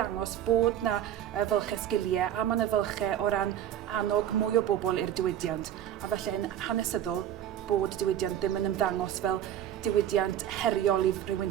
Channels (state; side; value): quieter; left; 10.8 dB